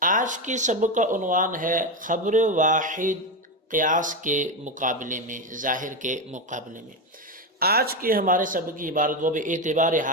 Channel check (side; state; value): both; normal; correlation 0.13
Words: آج کے سبق کا عنوان ہے خبر واحد قیاس کے مقابلے میں، ظاہر کے مقابلے میں۔ آج کے ہمارے سبق کی عبارت وہ بے اعتبار